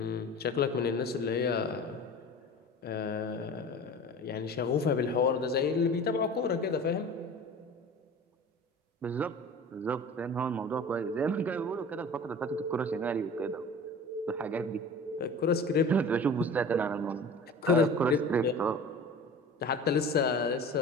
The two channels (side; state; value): both; normal; correlation 0.38